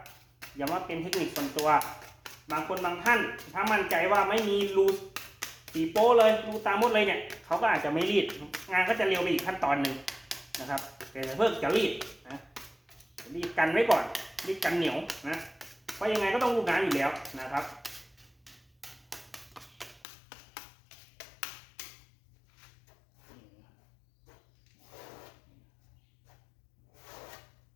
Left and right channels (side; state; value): right; drops out; at 20.0 s